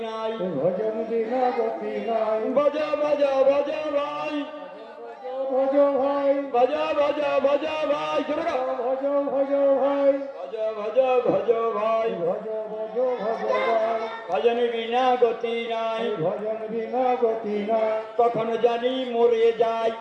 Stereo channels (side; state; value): both; identical; correlation 1.00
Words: নাই। ভজন বিনা গতি নাই ভজ ভজ ভজ ভাই, ভজ ভাই ভজ ভজ ভজ ভাই। জোরে গাও। ভজ ভজ ভাই ভজ ভজ ভজ ভাই, ভজ ভজ ভজ ভাই ভজন বিনা গতি নাই। ভজন বিনা গতি নাই কখন জানি মরে যাই,